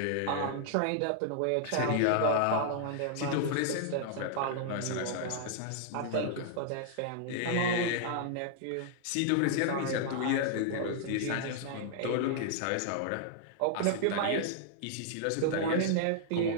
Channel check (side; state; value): both; different; correlation -0.01